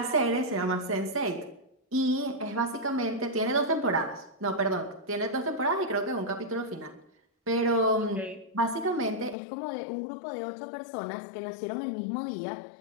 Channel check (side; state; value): right; drops out; at 9.3 s